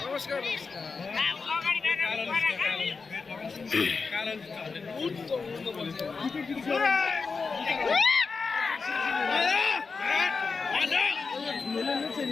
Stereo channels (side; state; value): right; quieter; 4.7 dB